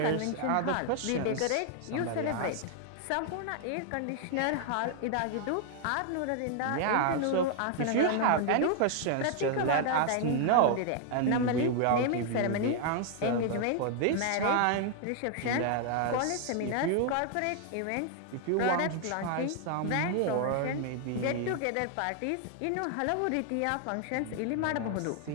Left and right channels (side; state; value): both; different; correlation 0.00